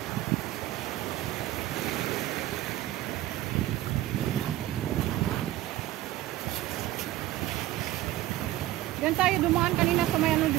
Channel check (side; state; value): left; quieter; 15.1 dB